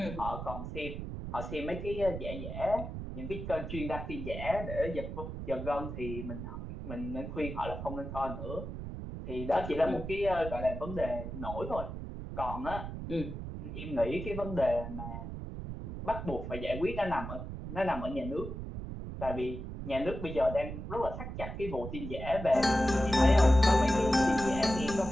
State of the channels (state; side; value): noise; right; rumble, 7 dB below the sound